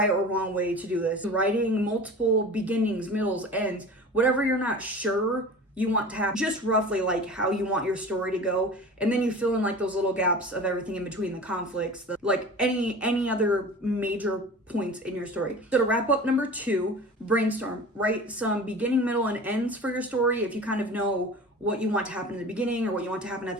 or wrong way to do this. Writing multiple beginnings, middles, ends, whatever you're not sure you want to have, just roughly like how you want your story to go, and then you fill in like those little gaps of everything in between, the conflicts, like any other major points in your story. So to wrap up number 2, brainstorm. Write some beginning, middle, and ends for your story. If you kind of know what you want to happen in the beginning or what you want to happen at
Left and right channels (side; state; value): both; normal; correlation 0.37